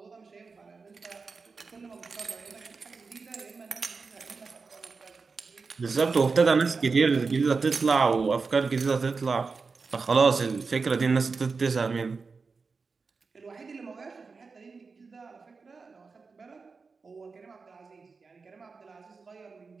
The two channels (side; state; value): left; quieter; 4.6 dB